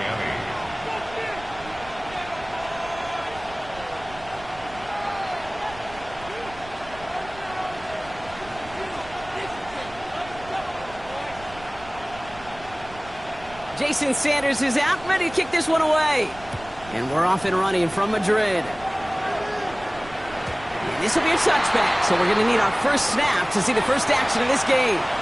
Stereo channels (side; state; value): right; noise; rumble, 19 dB below the sound